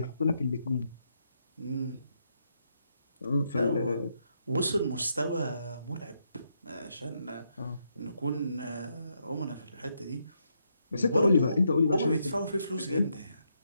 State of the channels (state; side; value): inverted; both; correlation -0.79